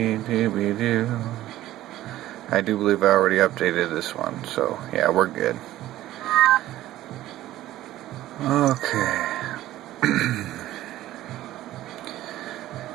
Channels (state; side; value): quieter; left; 14.6 dB